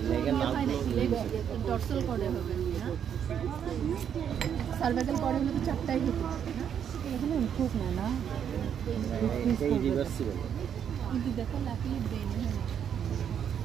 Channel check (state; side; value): quieter; left; 8.5 dB